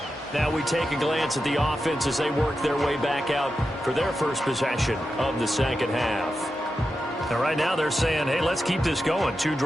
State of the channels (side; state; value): both; normal; correlation 0.90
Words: Now we take a glance at the offense as they work their way back out for their first possession of the second half. And right now they're saying, hey, let's keep this going. 2